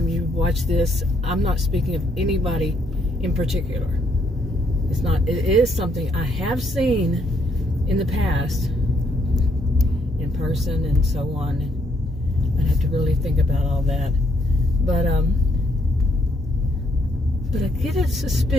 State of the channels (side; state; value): both; normal; correlation 0.72